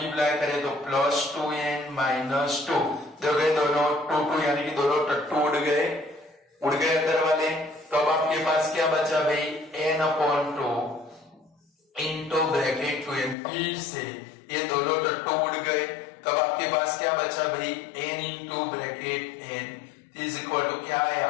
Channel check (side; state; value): right; drops out; at 13.4 s